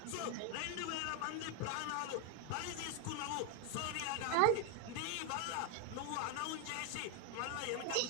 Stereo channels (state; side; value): different; both; correlation 0.01